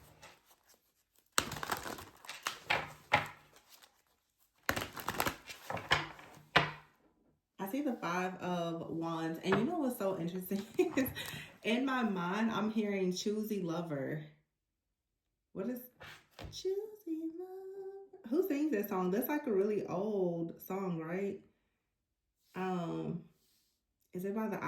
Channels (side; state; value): both; identical; correlation 1.00